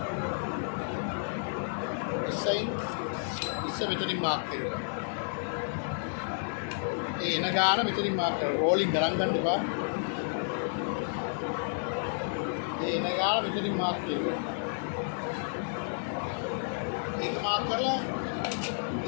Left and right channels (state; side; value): silent; right; 57 dB below the other